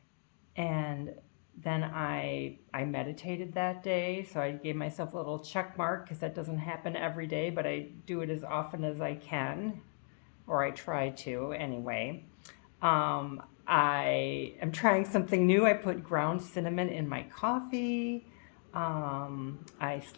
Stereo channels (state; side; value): silent; right; 54 dB below the other